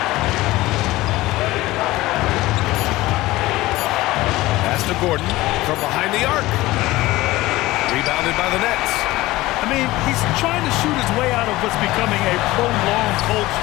Pass to Gordon from behind the arc. Rebounded by the Nets. I mean, he's trying to shoot his way out of what's becoming a prolonged cold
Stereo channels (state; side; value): quieter; right; 18.4 dB